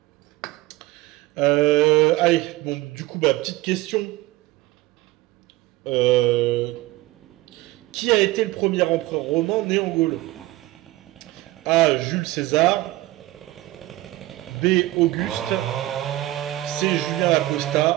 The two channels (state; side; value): quieter; left; 17.8 dB